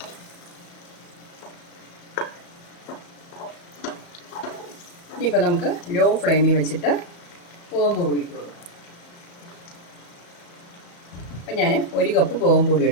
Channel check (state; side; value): late; right; 35 ms